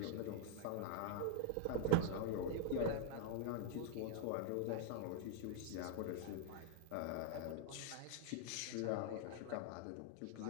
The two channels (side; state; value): both; different; correlation -0.01